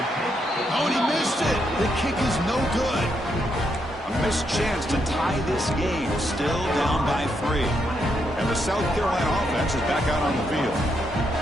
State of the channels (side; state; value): both; normal; correlation 0.79